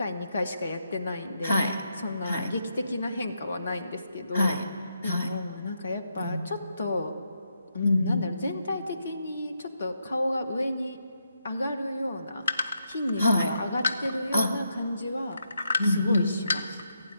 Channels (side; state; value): both; inverted; correlation -0.81